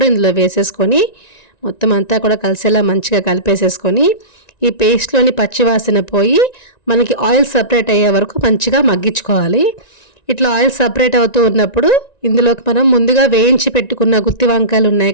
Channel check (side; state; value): right; late; 1.9 ms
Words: ఇందులో వేసేసుకొని మొత్తం అంతా కూడా కలిసేలా మంచిగా కలిపేసేసుకొని ఈ పేస్ట్లోని పచ్చివాసన పోయి మనకి ఆయిల్ సపరేట్ అయ్యే వరకు మంచిగా మగ్గించుకోవాలి. ఇట్లా ఆయిల్ సపరేట్ అవుతూ ఉన్నప్పుడు ఇందులోకి మనం ముందుగా వేయించి పెట్టుకున్న గుత్తి వంకాయలు ఉన్నాయి